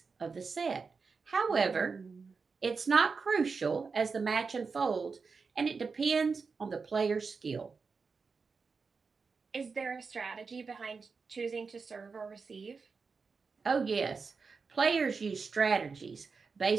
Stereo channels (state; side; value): quieter; left; 4.9 dB